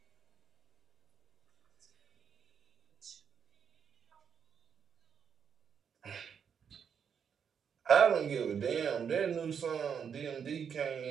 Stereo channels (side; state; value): left; quieter; 7.3 dB